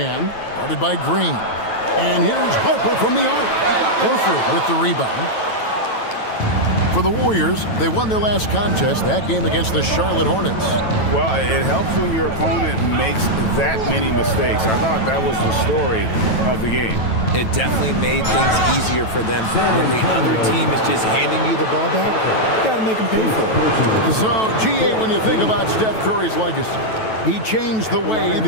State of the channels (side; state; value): right; late; 9.1 ms